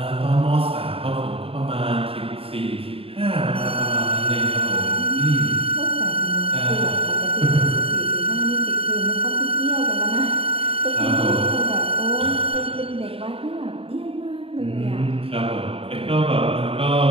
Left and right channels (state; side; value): late; left; 0.27 ms